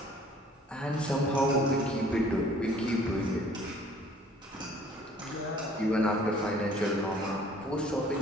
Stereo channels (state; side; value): normal; both; correlation 0.55